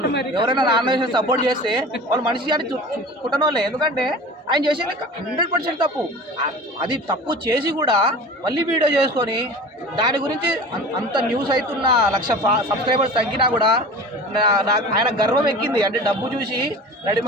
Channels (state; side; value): normal; both; correlation 0.37